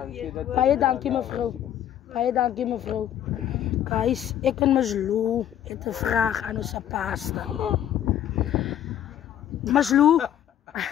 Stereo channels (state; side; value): quieter; right; 10.8 dB